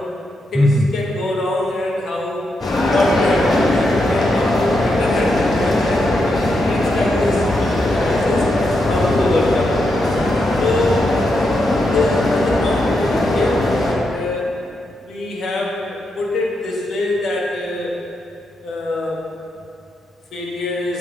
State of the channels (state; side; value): normal; both; correlation 0.83